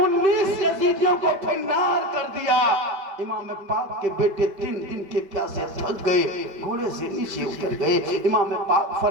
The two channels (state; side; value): late; left; 5.2 ms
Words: यजीदियों को फिन्नार कर दिया, इमाम पाक के बेटे 3 दिन के प्यासे थक गए, घोड़े से नीचे उतर गए। इमाम पाक